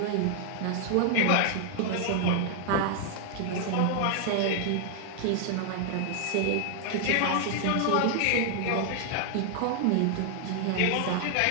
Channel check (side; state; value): both; different; correlation 0.00